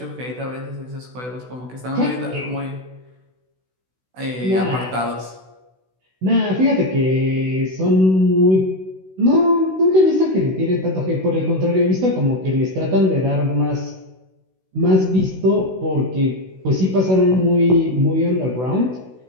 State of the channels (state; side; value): late; left; 16 ms